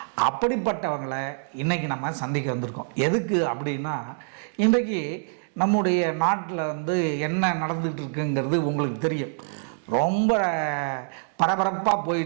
அப்படிப்பட்டவங்களை இன்றைக்கி நம்ம சந்திக்க வந்திருக்கோம். எதுக்கு அப்படின்னா, இன்றைக்கி நம்முடைய நாட்டில் என்ன நடந்துகிட்டு இருக்குங்கிறது உங்களுக்கு தெரியும். ரொம்ப பரபரப்பாக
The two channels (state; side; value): silent; left; digital silence